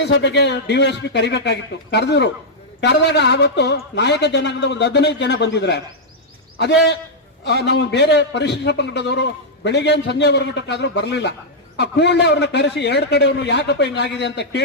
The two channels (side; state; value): both; normal; correlation -0.06